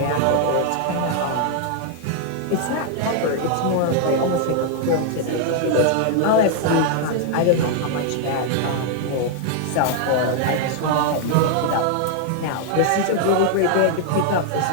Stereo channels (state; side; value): different; both; correlation 0.00